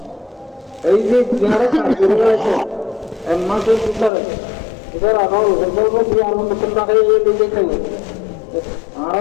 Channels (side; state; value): right; drops out; at 4.1 s